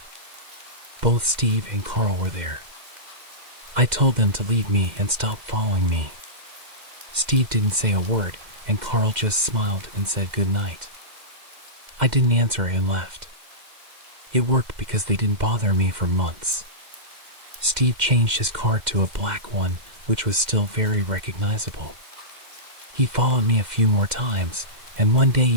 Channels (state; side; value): late; left; 2.1 ms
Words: Both Steve and Carl were there. I told them to leave me and stop following me. Steve didn't say a word, and Carl just smiled and said good night. I didn't answer and left. It worked because they didn't bother me for months. Steve changed his car to a black one, which was still very recognizable. He followed me a few more times, and one day